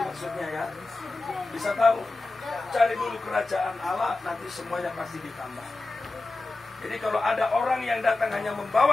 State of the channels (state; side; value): quieter; right; 3.2 dB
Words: maksudnya ya? Bisa tahu? Cari dulu kerajaan Allah, nanti semuanya pasti ditambah. Jadi kalau ada orang yang datang hanya